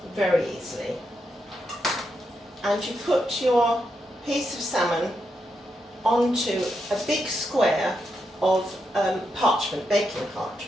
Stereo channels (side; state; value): both; normal; correlation 0.83